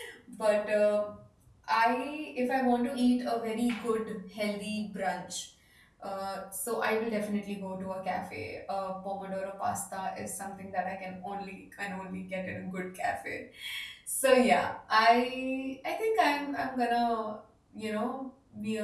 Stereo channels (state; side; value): identical; both; correlation 1.00